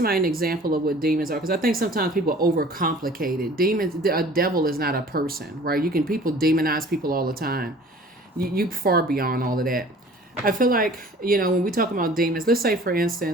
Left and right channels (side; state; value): both; normal; correlation 0.48